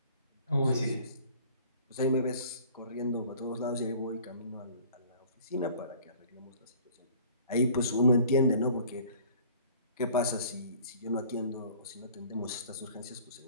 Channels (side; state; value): both; inverted; correlation -0.51